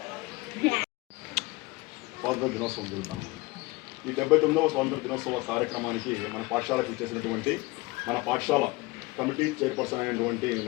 స్వాతంత్ర దినోత్సవం జరుగుతాం. ఈ 79వ స్వాతంత్ర దినోత్సవ కార్యక్రమానికి మన పాఠశాలకు ఇచ్చేసినటువంటి మన పాఠశాల కమిటీ చైర్పర్సన్ అయినటువంటి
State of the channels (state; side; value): quieter; right; 22.4 dB